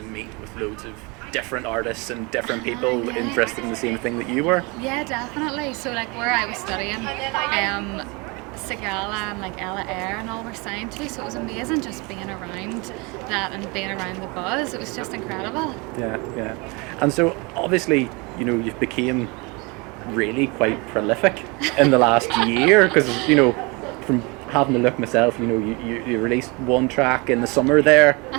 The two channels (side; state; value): left; quieter; 28.1 dB